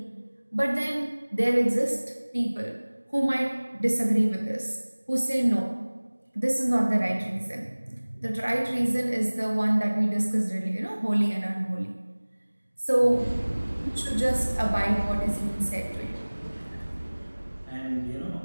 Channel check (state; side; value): inverted; both; correlation -1.00